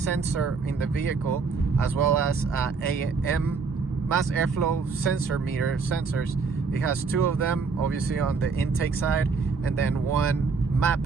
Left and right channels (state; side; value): quieter; left; 4.8 dB